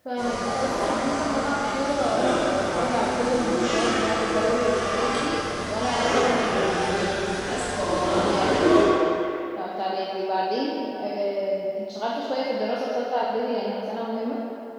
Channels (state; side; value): identical; both; correlation 1.00